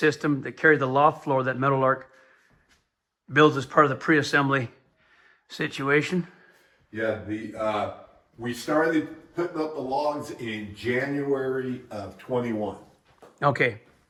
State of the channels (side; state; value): both; identical; correlation 1.00